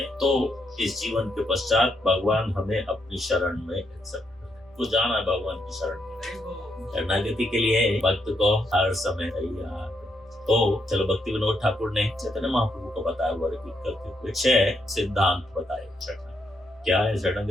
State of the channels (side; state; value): both; normal; correlation 0.78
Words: तो इस जीवन के पश्चात भगवान हमें अपनी शरण में एक्सेप्ट करें। तो जाना है भगवान की शरण में। शरणागति के लिए भक्त को हर समय तैयार। तो चलो, भक्ति विनोद ठाकुर ने चैतन्य महाप्रभु को बताया हुआ रिपीट करते हुए 6 सिद्धांत बताए शरणागति। क्या है